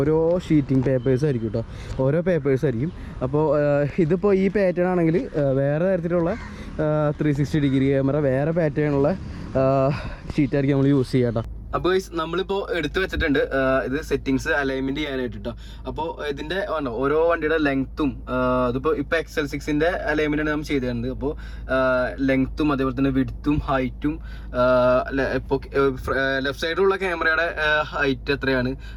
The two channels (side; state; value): both; identical; correlation 1.00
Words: ഷീറ്റിംഗ് പേപ്പേഴ്സ് ആയിരിക്കും കേട്ടോ. ഓരോ പേപ്പേഴ്സ് ആയിരിക്കും. അപ്പോൾ ഇതിപ്പോൾ ഈ പാറ്റേൺ ആണെങ്കിൽ വേറെ തരത്തിലുള്ള 360 ഡിഗ്രി ക്യാമറ വേറെ പാറ്റേണുള്ള ഷീറ്റായിരിക്കും നമ്മൾ യൂസ് ചെയ്യാം കേട്ടോ. അപ്പോൾ നമ്മളിപ്പോൾ എടുത്തു വെച്ചിട്ടുണ്ട് ഇത് സെറ്റിങ്സ് അലൈൻമെൻറ്റ് ചെയ്യാനായിട്ട് കേട്ടോ. അപ്പോൾ ഇതിൻ്റെ ഓരോ വണ്ടിയുടെ ലെങ്ത്തും അതിപ്പോൾ XL6ൻ്റെ അലൈൻമെൻറ്റാണ് നമ്മൾ ചെയ്ത് തരുന്നത്. അപ്പോൾ ലെങ്ത്തും അതേപോലെ തന്നെ വിഡ്ത്തും ഹൈറ്റും ഇപ്പോൾ ലെഫ്റ്റ് സൈഡിലുള്ള ക്യാമറയുടെ ഹൈറ്റ് എത്രയാണ്,